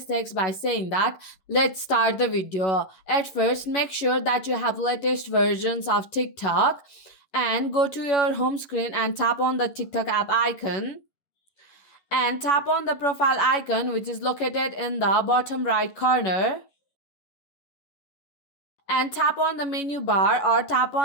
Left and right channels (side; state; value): right; late; 11 ms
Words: by saying that. Let's start the video. At first, make sure that you have latest versions of TikTok and go to your home screen and tap on the TikTok app icon and tap on the profile icon which is located in the bottom right corner and tap on the menu bar or tap